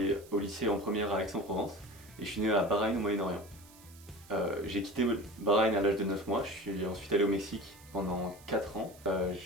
au lycée en première à Aix-en-Provence et je suis né à Bahreïn au Moyen-Orient. J'ai quitté Bahreïn à l'âge de 9 mois, je suis ensuite allé au Mexique pendant 4 ans.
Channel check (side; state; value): right; noise; hiss, 23 dB below the sound